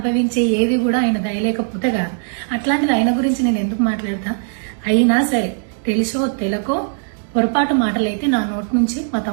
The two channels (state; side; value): silent; left; digital silence